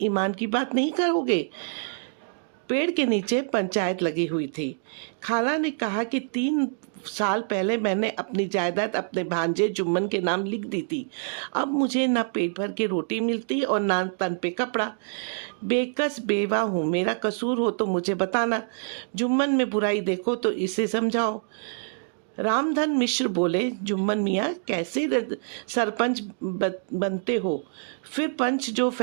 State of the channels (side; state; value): left; silent; digital silence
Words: ईमान की बात नहीं करोगे? पेड़ के नीचे पंचायत लगी हुई थी। खाला ने कहा कि 3 साल पहले मैंने अपनी जायदाद अपने भांजे जुम्मन के नाम लिख दी थी। अब मुझे ना पेट भर के रोटी मिलती और ना तन पे कपड़ा। बेकस बेवा हूँ, मेरा कसूर हो तो मुझे बताना। जुम्मन में बुराई देखो तो इसे समझाओ। रामधन मिश्र बोले, जुम्मन मियाँ कैसे सरपंच बनते हो? फिर पंच जो